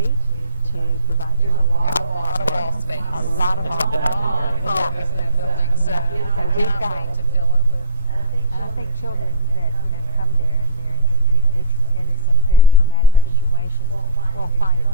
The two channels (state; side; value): inverted; both; correlation -0.34